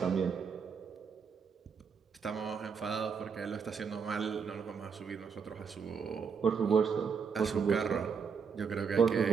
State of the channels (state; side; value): quieter; left; 6.2 dB